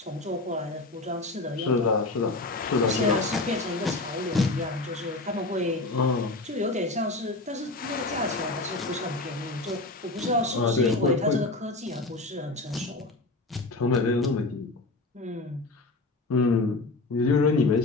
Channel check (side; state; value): right; quieter; 3.1 dB